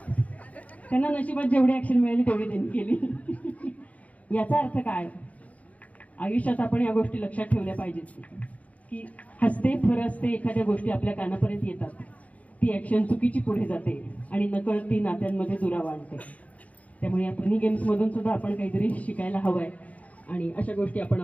त्यांना नशिबात जेवढी ऍक्शन मिळाली तेवढी त्यांनी केली. याचा अर्थ काय? आयुष्यात आपण या गोष्टी लक्षात ठेवल्या पाहिजेत की हसते फरसते एखाद्या गोष्टी आपल्या कानापर्यंत येतात, ती ऍक्शन चुकीची पुढे जाते आणि नकळत ती नात्यांमध्ये दुरावा आणते. त्यामुळे या फनी गेम्समधून सुद्धा आपण काहीतरी शिकायला हवंय आणि अशा गोष्टी आपण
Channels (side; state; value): right; late; 0.069 ms